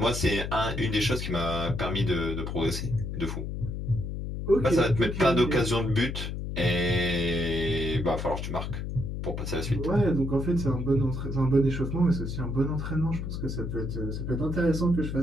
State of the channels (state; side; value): noise; left; hum, 5 dB below the sound